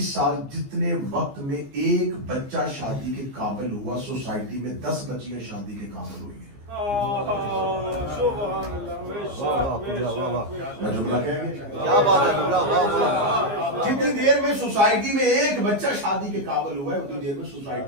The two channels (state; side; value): late; left; 15 ms